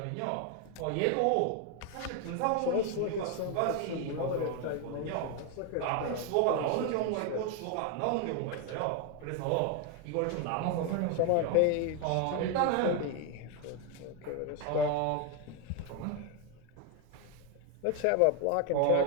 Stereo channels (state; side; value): different; both; correlation 0.01